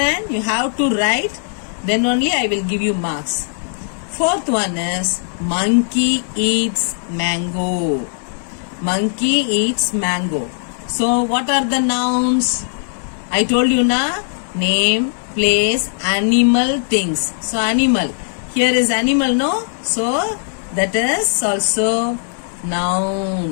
you have to write. Then only I will give you marks. Fourth one is monkey eats mango. Monkey eats mango. So what are the nouns? I told you na, name, place, animal, things. So animal. Here is animal, no? So that is also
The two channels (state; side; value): silent; right; digital silence